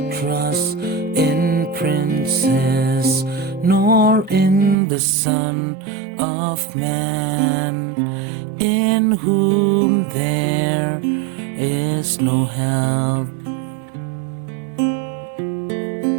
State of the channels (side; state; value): left; drops out; at 4.8 s